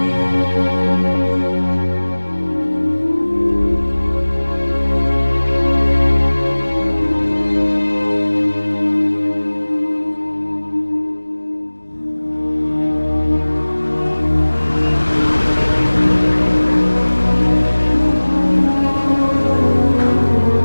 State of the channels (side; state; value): both; inverted; correlation -1.00